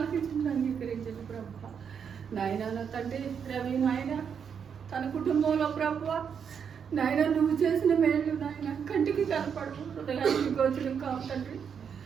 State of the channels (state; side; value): quieter; left; 7.2 dB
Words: అంగీకరించండి ప్రభా. నాయన నా తండ్రి రవి నాయన తన కుటుంబంలో ప్రభా నాయన నువ్వు చేసిన మేలు నాయన కంటికి కనపడు, హృదయానికి గోచరం కావు తండ్రి.